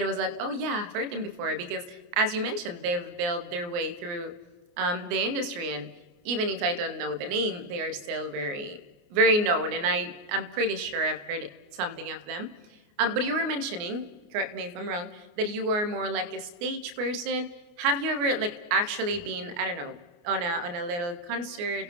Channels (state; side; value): late; left; 29 ms